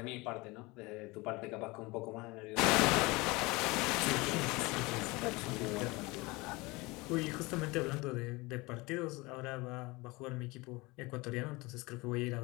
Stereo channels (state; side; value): quieter; right; 23.8 dB